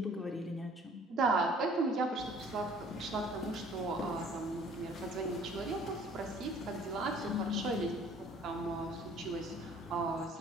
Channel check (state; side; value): normal; both; correlation 0.53